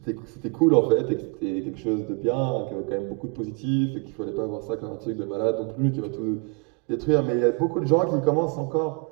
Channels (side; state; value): left; quieter; 33.3 dB